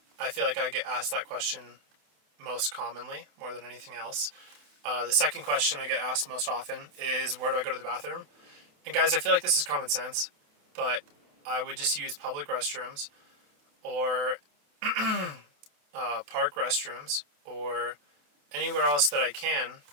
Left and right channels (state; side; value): late; left; 28 ms